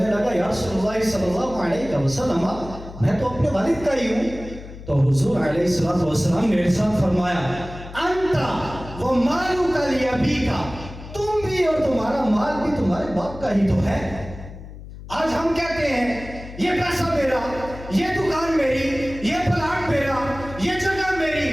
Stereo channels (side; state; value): left; noise; hum, 14 dB below the sound